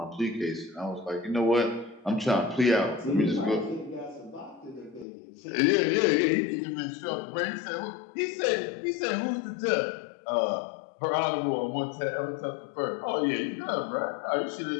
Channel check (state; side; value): drops out; right; at 5.1 s